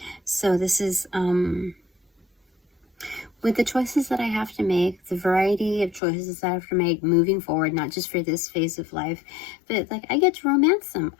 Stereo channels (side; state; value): right; drops out; at 6.0 s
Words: So this is, with the choices that I have to make, the variety of choices that I have to make moving forward, not just for this phase of life, but like I get to romance them.